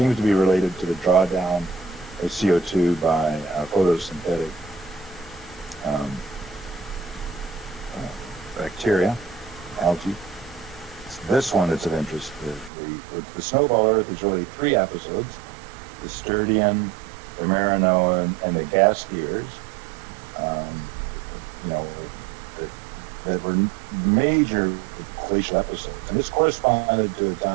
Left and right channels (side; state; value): left; drops out; at 12.7 s